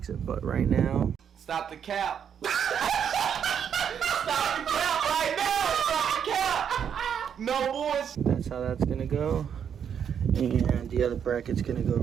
it. But right now, stop the cap. Stop the cap right now. Stop the cap. No boys. That's how that's gonna go. And the other bracket's gonna go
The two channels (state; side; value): quieter; left; 8.0 dB